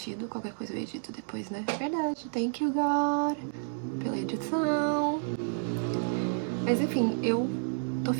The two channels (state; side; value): silent; left; digital silence